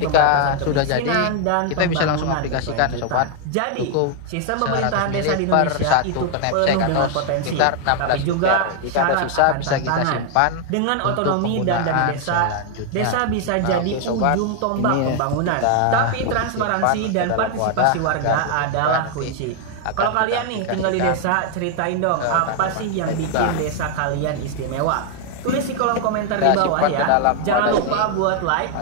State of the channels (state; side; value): different; both; correlation 0.00